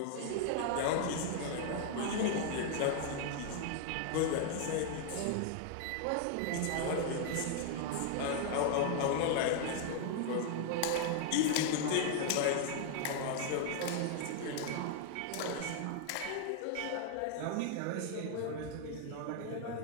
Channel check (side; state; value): both; different; correlation 0.00